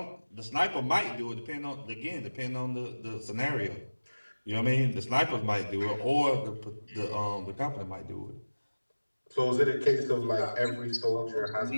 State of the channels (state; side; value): inverted; both; correlation -1.00